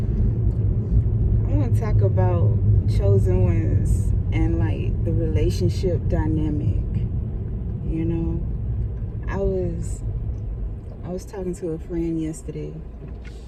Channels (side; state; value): both; identical; correlation 1.00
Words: want to talk about chosen ones and like the relationship dynamic. You know, I was talking to a friend yesterday,